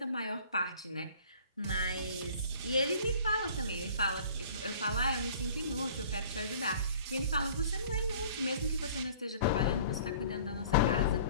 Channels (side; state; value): both; inverted; correlation -0.49